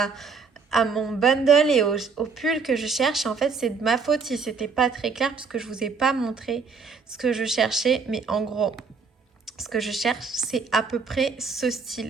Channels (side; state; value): left; quieter; 5.0 dB